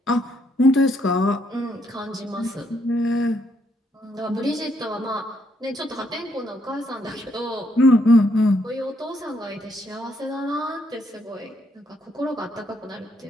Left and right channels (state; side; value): normal; both; correlation 0.73